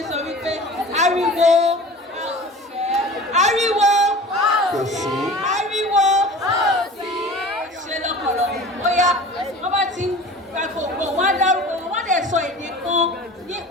ń sọ wípé ariwo, ariwo, ariwo, ṣe lọ́pọ̀lọpọ̀. Bóyá wọ́n bá ti ń gba gbogbo wọn á dárúkọ wọn, wọ́n dẹ̀ sọ èdè kan,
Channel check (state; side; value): normal; both; correlation 0.40